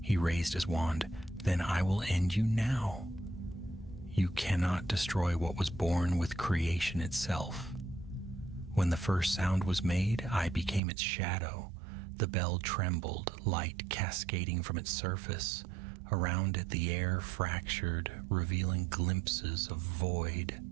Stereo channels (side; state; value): left; drops out; at 10.8 s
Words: He raised his wand. "Then I will end you now. You cannot destroy what was born with creation itself. When the first sound was made, I became its shadow. The bell trembled, light cascading from its surface. Around it the air fractured, revealing glimpses of void.